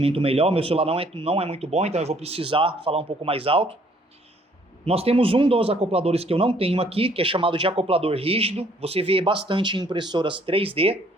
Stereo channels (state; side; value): normal; both; correlation 0.62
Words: melhor. Meu celular não é muito bom, então eu vou precisar falar um pouco mais alto. Nós temos um dos acopladores que eu não tenho aqui, que é chamado de acoplador rígido. Você vê bastante em impressoras 3D.